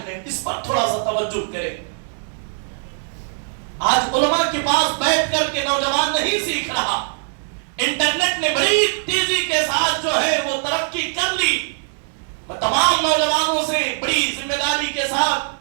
اس پر تھوڑا سا توجہ کریں۔ آج علماء کے پاس بیٹھ کر کے نوجوان نہیں سیکھ رہا، انٹرنیٹ نے بڑی تیزی کے ساتھ جو ہے وہ ترقی کر لی۔ میں تمام نوجوانوں سے بڑی ذمہ داری کے ساتھ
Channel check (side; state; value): left; silent; 65 dB below the other